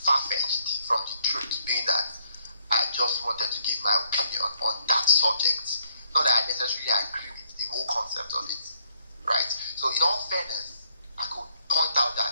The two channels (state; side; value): inverted; both; correlation -0.69